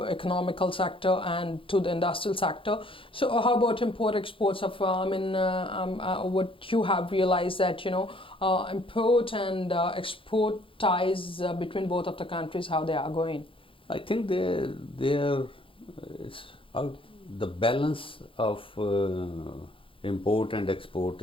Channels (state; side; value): late; right; 0.25 ms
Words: economical sector and to the industrial sector. So how about import exports of, what you have realized that, import and export ties between both of the countries, how they are going? I think they are, it's out. The balance of import and export